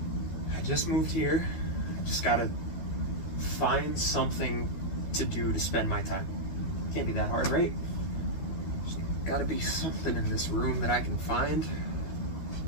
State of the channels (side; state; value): right; late; 12 ms